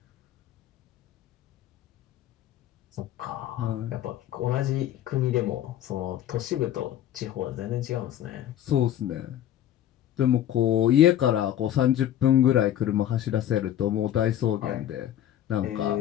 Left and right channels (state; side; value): quieter; right; 11.5 dB